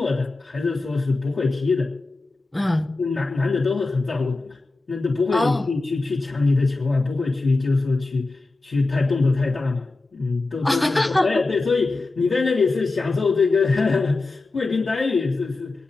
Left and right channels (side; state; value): right; quieter; 3.3 dB